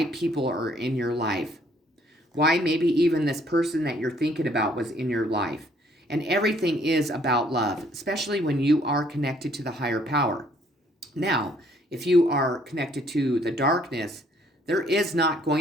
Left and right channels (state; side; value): normal; both; correlation 0.63